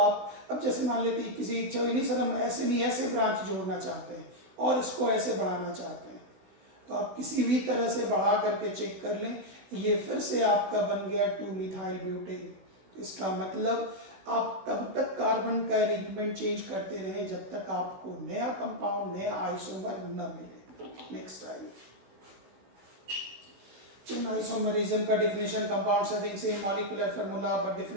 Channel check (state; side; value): late; left; 16 ms